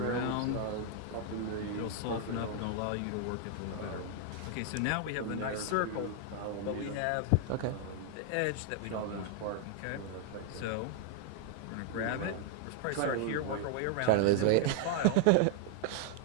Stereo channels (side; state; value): both; different; correlation 0.00